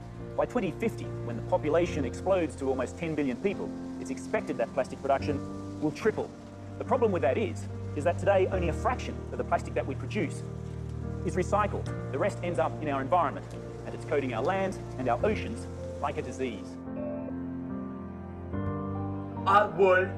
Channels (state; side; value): identical; both; correlation 1.00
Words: By 2050, when the population explodes to almost 10 billion people, it's expected that plastic production will triple. The problem with that is that today only a fraction of the plastic that we produce is recycled. The rest ends up in our environment, and it's coating our land and our oceans like a disease. Our